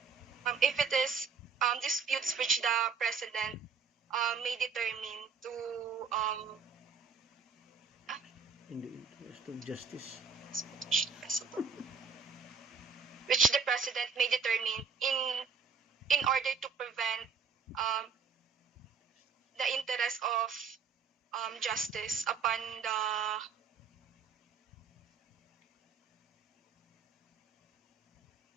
If it is disputes which the president may determine to In the interest of justice. which the president may determine in order to prevent the interest of justice upon the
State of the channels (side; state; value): left; quieter; 5.8 dB